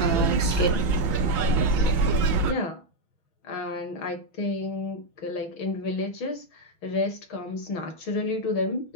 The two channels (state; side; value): late; right; 6.3 ms